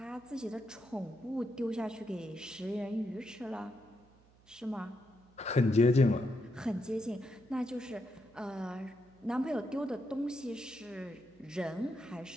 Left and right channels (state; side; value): noise; right; hum, 28 dB below the sound